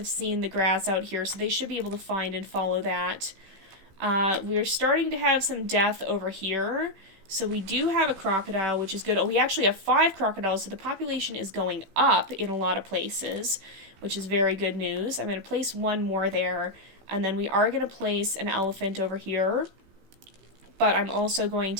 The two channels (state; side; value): late; left; 16 ms